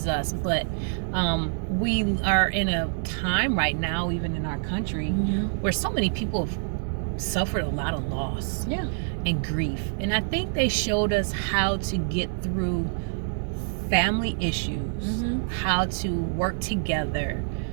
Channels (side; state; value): left; silent; digital silence